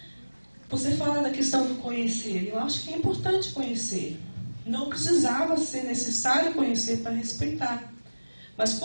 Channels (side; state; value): both; inverted; correlation -1.00